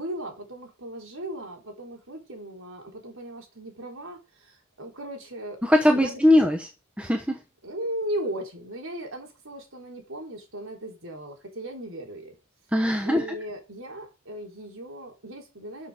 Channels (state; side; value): normal; both; correlation 0.78